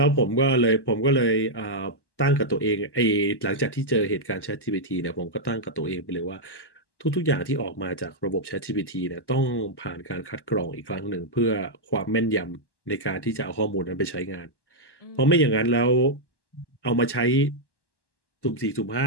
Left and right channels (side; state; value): right; late; 1.1 ms